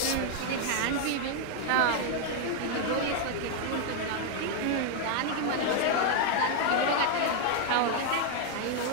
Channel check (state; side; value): different; both; correlation 0.00